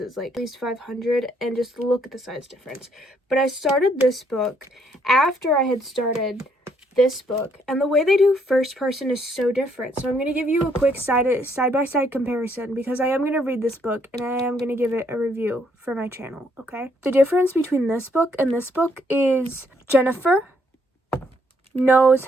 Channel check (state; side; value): normal; both; correlation 0.70